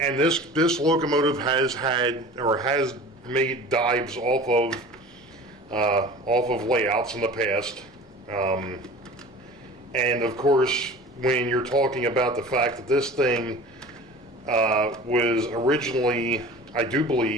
this locomotive has made dives off of layouts in the past. And of course, when you're talking about the fact that this thing was originally, I do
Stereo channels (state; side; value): normal; both; correlation 0.40